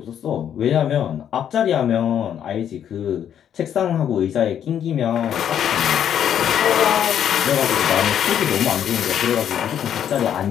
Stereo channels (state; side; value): quieter; right; 9.4 dB